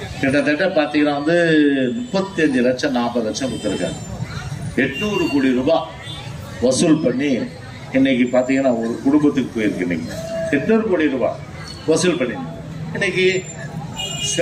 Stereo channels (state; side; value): identical; both; correlation 1.00